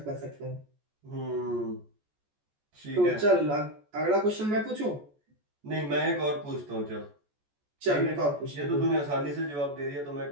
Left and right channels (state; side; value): late; left; 14 ms